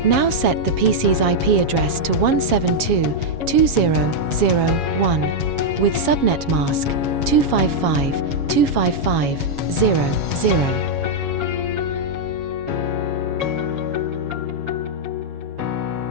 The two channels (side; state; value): left; late; 7.2 ms